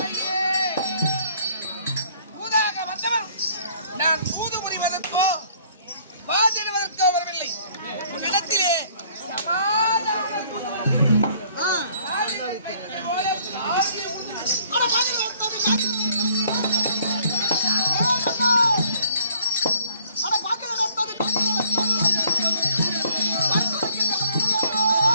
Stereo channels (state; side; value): inverted; both; correlation -0.60